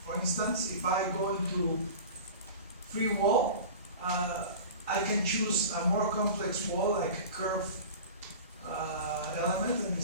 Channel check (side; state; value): both; inverted; correlation -0.35